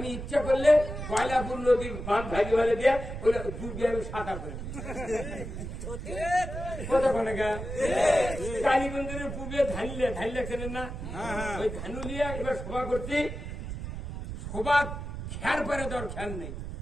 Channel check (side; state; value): right; noise; rumble, 7 dB below the sound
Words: ইচ্ছা করলে গয়লাপুর নদীর বাঁধ ভাগে ভাগে দিয়ে ওগুলা ডুবিয়ে আমি সাঁতার করে কতক্ষণে গা কালীগঞ্জের পুবে ধানলে চেনেন না? ওই ধানুলিয়া এবার সভা করছি, সভা খেয়ার পরে দর খেয়াল নেই।